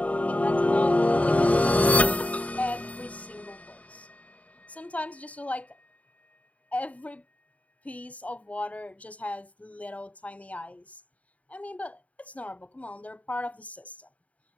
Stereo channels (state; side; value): late; right; 0.069 ms